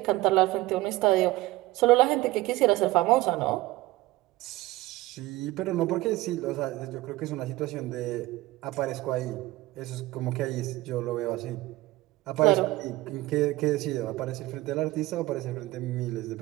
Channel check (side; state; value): left; quieter; 18.5 dB